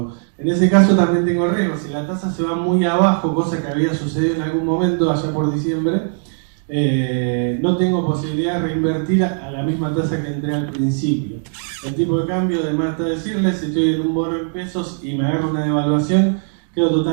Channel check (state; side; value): silent; left; 61 dB below the other